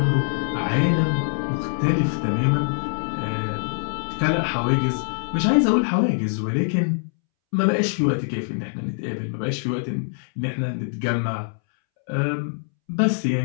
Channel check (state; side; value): silent; right; 63 dB below the other